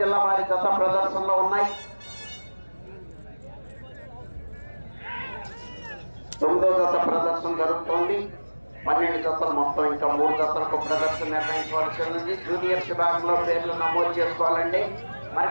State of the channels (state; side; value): inverted; both; correlation -1.00